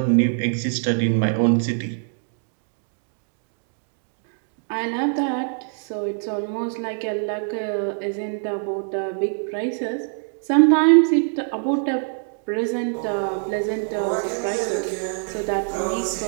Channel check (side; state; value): left; silent; digital silence